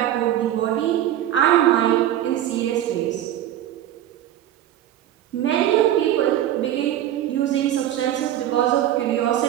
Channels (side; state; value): left; quieter; 12.1 dB